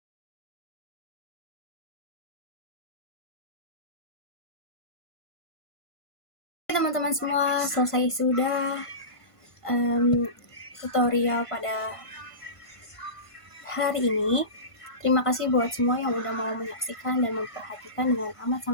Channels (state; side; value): late; right; 1.5 ms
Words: Teman-teman semua, selesai sudah tutorial pada hari ini. Terima kasih buat semua yang udah mau menyaksikan dan memperhatikan dengan amat